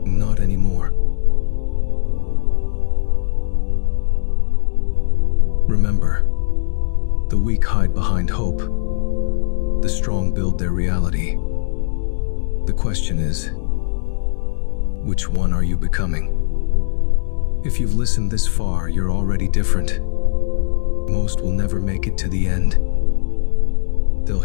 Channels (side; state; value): right; silent; 62 dB below the other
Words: Not anymore. Remember, the weak hide behind hope. The strong build their reality. The question is, which one are you becoming? If you've listened this far, you're already different. Most will never make it to the end. They'll